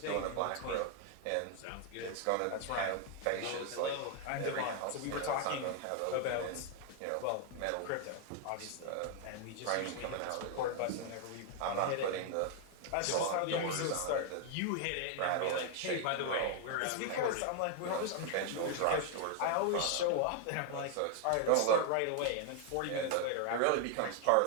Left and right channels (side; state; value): both; different; correlation 0.00